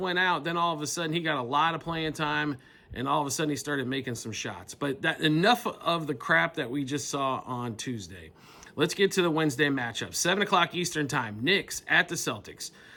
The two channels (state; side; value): identical; both; correlation 1.00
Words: out. Then all of a sudden he got a lot of playing time, and all of a sudden he started making some shots. But enough of the crap that we just saw on Tuesday. Let's get to the Wednesday matchup. 7 o'clock Eastern time, Knicks at the Celtics.